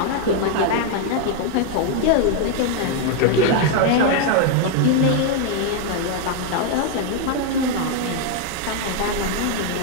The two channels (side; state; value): both; different; correlation 0.00